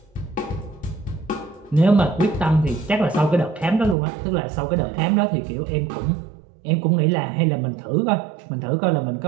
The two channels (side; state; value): left; drops out; at 4.0 s